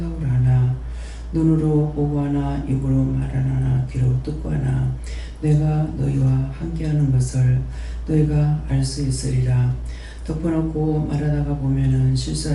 하나 눈으로 보고 하나 입으로 말하나 귀로 듣고 하나 내가 너희와 함께하는 것을 너희가 알 수 있으리라. 덮어놓고 말하다가 보면은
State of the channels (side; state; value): both; identical; correlation 1.00